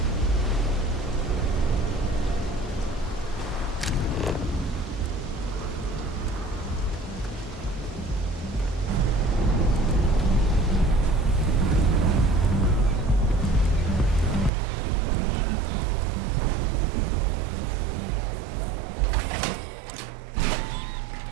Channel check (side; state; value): left; drops out; at 14.5 s